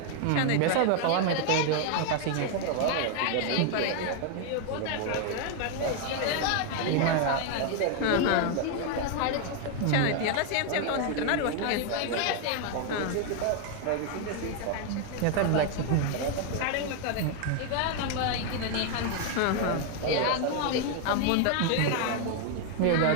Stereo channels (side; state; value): both; different; correlation 0.00